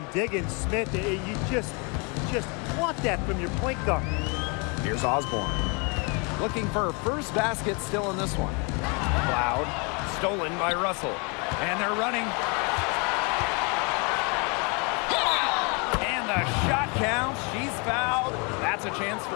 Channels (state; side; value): quieter; right; 32.4 dB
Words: Diggins Smith. You just want that from your point guard. Here's Osborne. Looking for her first basket still in this one. Cloud, stolen by Russell. And they're running. And the shot counts. She's fouled. That's a chance for